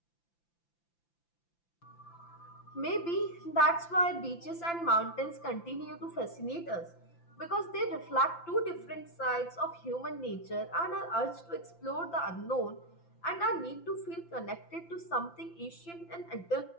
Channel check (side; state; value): right; late; 5.9 ms